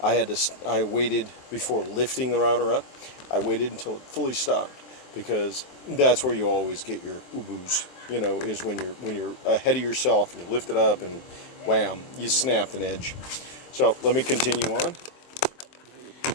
I waited before lifting the router up. I waited until it fully stopped, because that's where you always get your uboos. You know, is when you're ahead of yourself and you lift it up and wham, you snapped an edge. So let me continue on.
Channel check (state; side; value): late; right; 23 ms